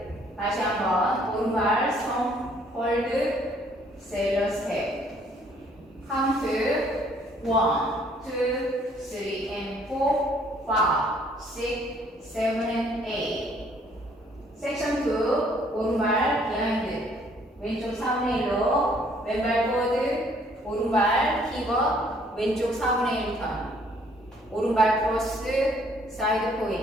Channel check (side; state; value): both; normal; correlation 0.63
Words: 다시 한번 오른발 스톰, 홀드, 세일러 스텝. 카운트 1, 2, 3 and 4, 5, 6, 7 and 8. 섹션 2 오른발 비하인드 왼쪽 4분의 1로 왼발 포워드 오른발 힙업 왼쪽 4분의 1턴 오른발 크로스 사이드